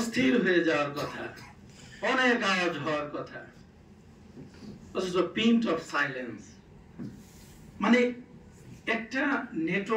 হয়ে যাওয়ার কথা, অনেক আওয়াজ হওয়ার কথা, অথচ পিন্ট অফ সাইলেন্স। মানে একটা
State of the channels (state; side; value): identical; both; correlation 1.00